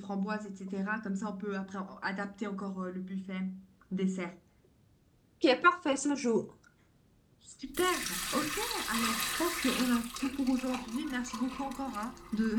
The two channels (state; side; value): identical; both; correlation 1.00